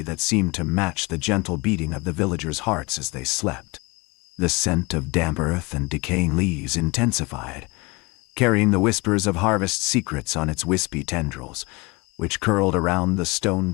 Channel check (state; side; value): quieter; right; 26.1 dB